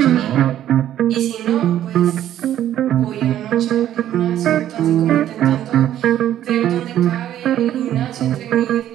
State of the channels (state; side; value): quieter; left; 11.7 dB